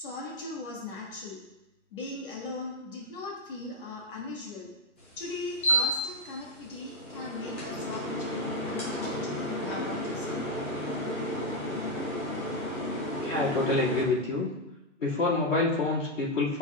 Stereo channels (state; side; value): normal; both; correlation 0.02